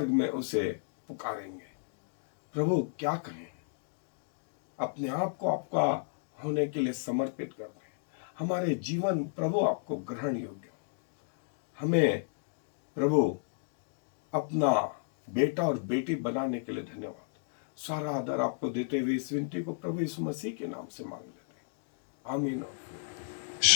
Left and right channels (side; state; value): right; silent; digital silence